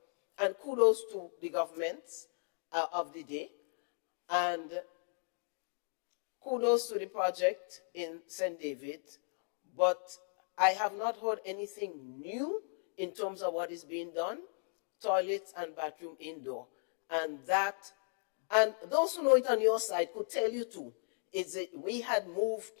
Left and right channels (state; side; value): silent; right; 54 dB below the other